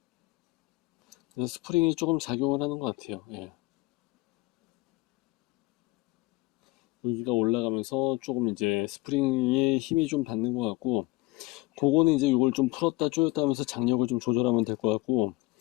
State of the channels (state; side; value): quieter; right; 20.5 dB